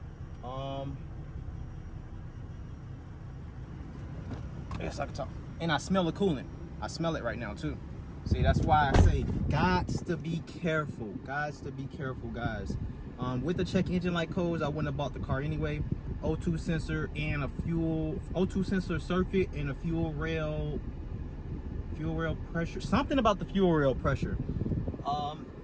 I guess I can talk. And I smell the coolant. I smell it right now too. See, that's why I say, gots to be careful. Gots to be careful, guys. With the check engine light codes, I wouldn't have bought the car anyway. O2 sensor and a O2 sensor circuit and a fuel rail pressure, something about the fuel rail pressure.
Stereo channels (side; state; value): both; identical; correlation 1.00